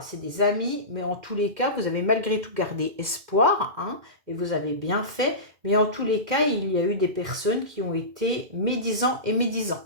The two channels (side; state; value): left; late; 2.1 ms